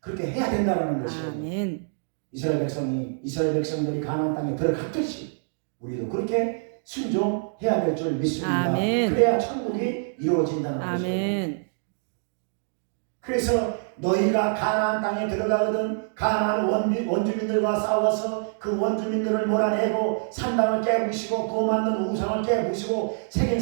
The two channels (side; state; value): left; silent; digital silence